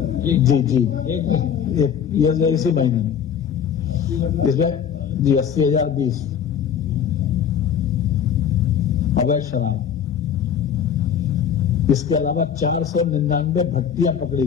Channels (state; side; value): quieter; right; 8.2 dB